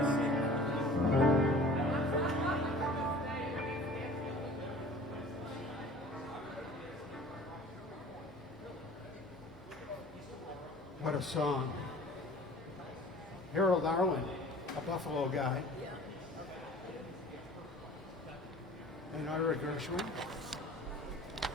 What a song. Harold Arlen, a Buffalo guy. And Ira Gershwin.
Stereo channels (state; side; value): normal; both; correlation 0.45